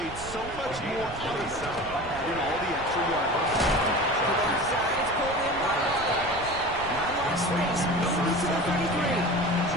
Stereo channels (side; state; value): right; noise; rumble, 14 dB below the sound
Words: so much more out of it in all the extra yards. To the left side, it's pulled in by Waddle. Not a lot of space. Moving to the 33.